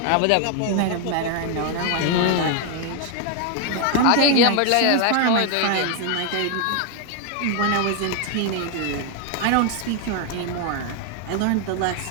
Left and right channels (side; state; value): both; different; correlation 0.01